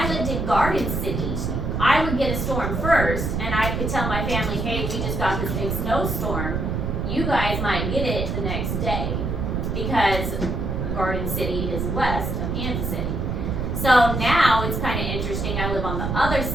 lived in Garden City, I would get a storm first, and I could tell my family, hey, we just got this big snowstorm. You guys might get it the next day, because Garden City is west of Kansas City. So now it's kind of interesting. I live on the other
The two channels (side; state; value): right; noise; rumble, 1 dB below the sound